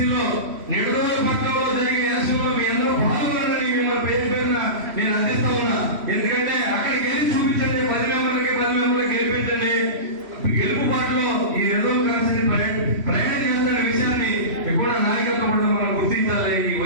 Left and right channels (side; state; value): left; late; 3.1 ms